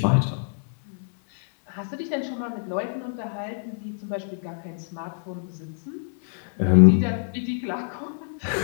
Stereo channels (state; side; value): silent; right; digital silence